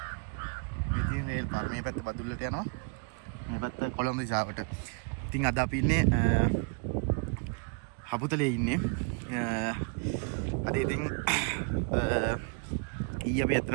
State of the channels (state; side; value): quieter; left; 34.7 dB